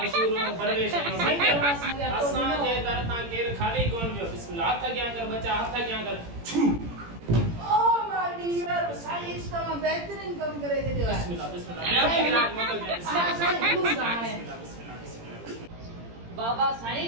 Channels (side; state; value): left; late; 18 ms